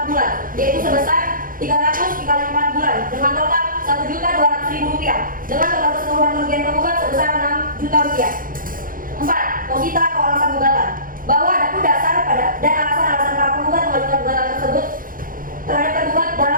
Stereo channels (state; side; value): late; left; 0.40 ms